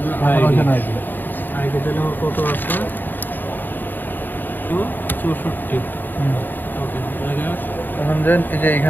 আইডি আইডি দিলে আমার কত আছে 264 ওকে এখন দেন এই যে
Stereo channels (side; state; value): right; late; 0.091 ms